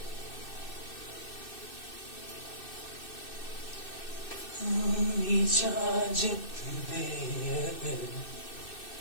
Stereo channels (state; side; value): late; right; 2.6 ms